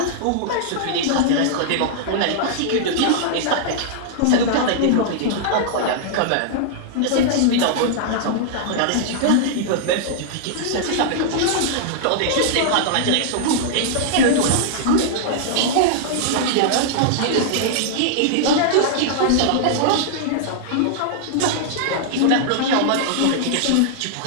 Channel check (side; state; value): both; different; correlation -0.01